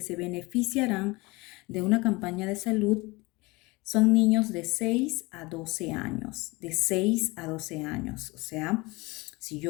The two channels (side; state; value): right; quieter; 23.8 dB